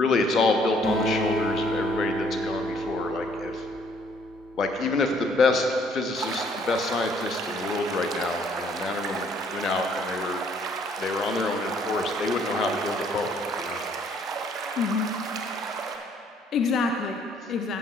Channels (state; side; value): normal; both; correlation 0.63